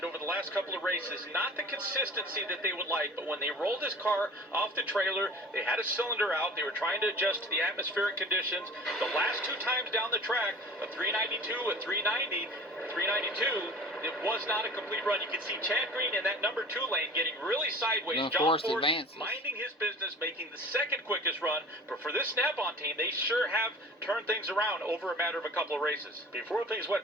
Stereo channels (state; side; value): normal; both; correlation 0.42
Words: over the last couple of races. Not the consistency that they would like, but when they rolled this car off the trailer, they had a cylinder out. They were trying to adjust to the atmospheric conditions. The last 2 times down the track, a 392, a 390, 392, it was not a complete run. You can see Chad Green in that number 2 lane getting really sideways. John Force advances. minding his business, making the second quickest run. But for this Snap-on team, they sure have turned things around over a matter of a couple of races. Before things